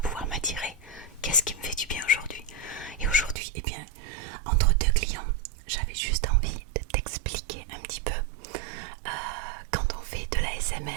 m'attirer. Qu'est-ce qui me fait du bien aujourd'hui. Et aujourd'hui, eh bien, entre deux clients, j'avais juste envie de t'expliquer un petit peu quand on fait de la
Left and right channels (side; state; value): left; drops out; at 3.4 s